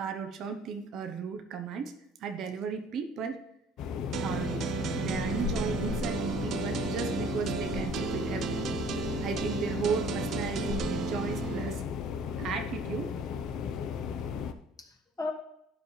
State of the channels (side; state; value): both; normal; correlation 0.52